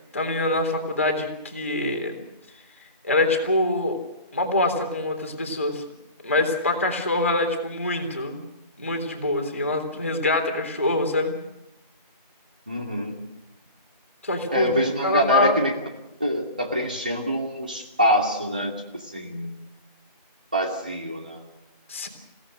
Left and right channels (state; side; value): inverted; both; correlation -0.33